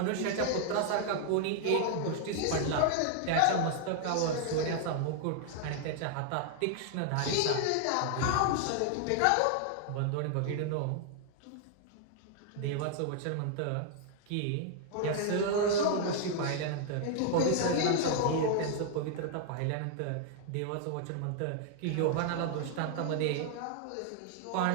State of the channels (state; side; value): different; both; correlation 0.00